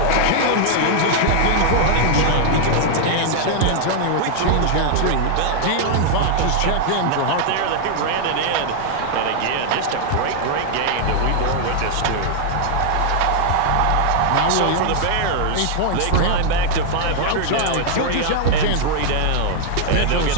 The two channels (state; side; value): different; both; correlation 0.00